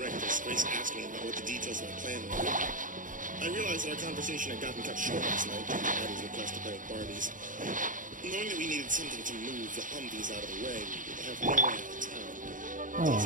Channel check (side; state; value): left; late; 0.38 ms